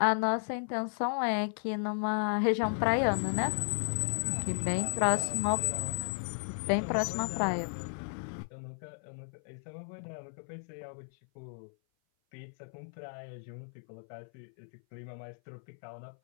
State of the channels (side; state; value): right; silent; 55 dB below the other